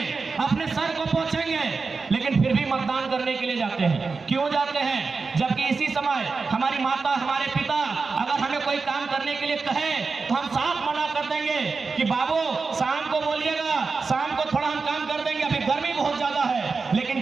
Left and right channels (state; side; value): quieter; left; 4.5 dB